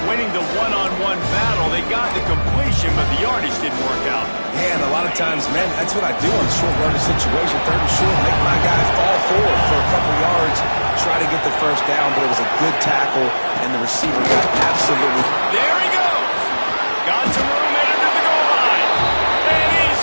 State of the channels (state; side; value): inverted; both; correlation -1.00